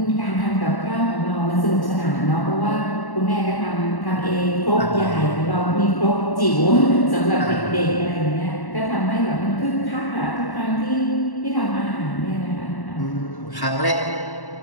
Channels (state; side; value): late; right; 1.1 ms